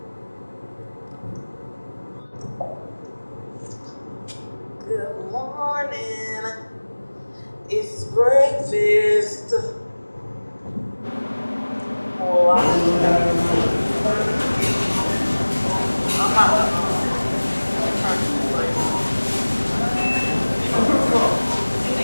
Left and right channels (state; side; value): inverted; both; correlation -1.00